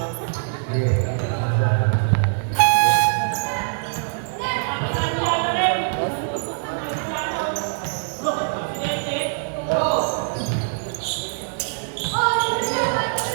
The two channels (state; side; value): silent; left; digital silence